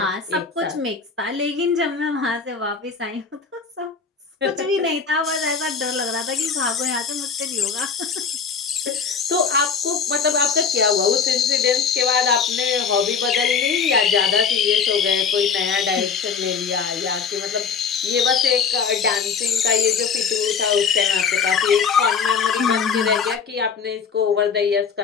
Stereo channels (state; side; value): quieter; right; 5.9 dB